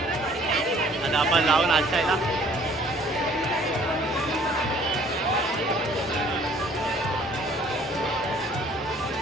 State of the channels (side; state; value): both; normal; correlation 0.56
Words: आता आपण लावून नाचायला.